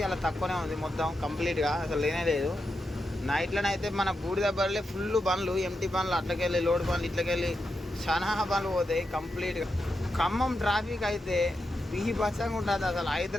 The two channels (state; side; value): normal; both; correlation 0.86